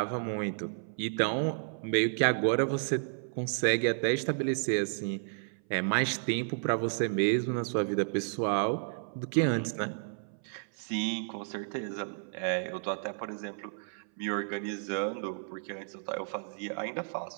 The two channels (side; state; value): left; silent; 56 dB below the other